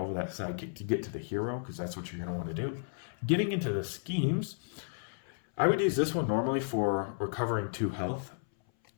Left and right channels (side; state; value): right; silent; 56 dB below the other